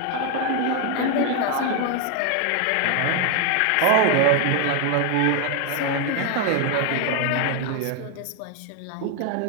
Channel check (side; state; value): both; different; correlation 0.01